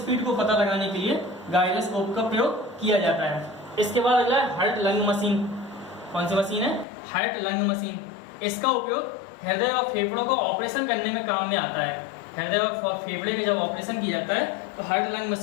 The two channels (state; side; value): drops out; right; at 6.9 s